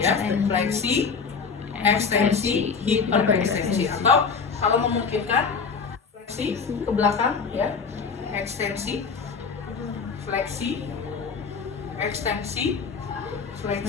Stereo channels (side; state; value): right; quieter; 5.4 dB